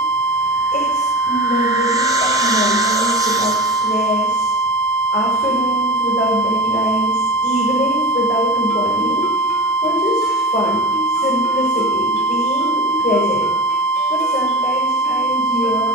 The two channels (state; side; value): normal; both; correlation 0.31